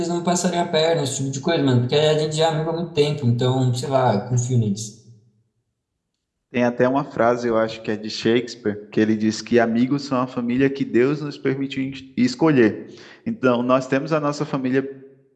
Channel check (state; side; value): identical; both; correlation 1.00